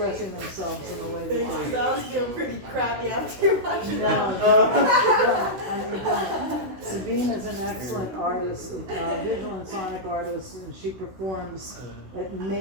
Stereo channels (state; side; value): late; left; 16 ms